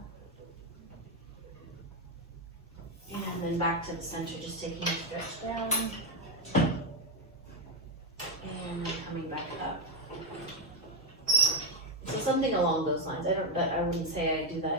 And then back to the center, just taking a stretch down. And then coming back up. So something along those lines. I wouldn't say I do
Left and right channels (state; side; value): noise; left; rumble, 29 dB below the sound